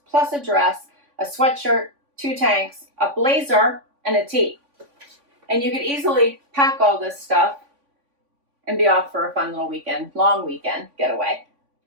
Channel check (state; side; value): late; left; 3.5 ms